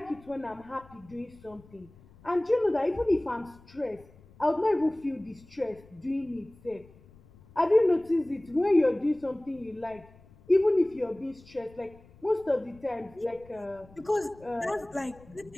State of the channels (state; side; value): noise; left; rumble, 25 dB below the sound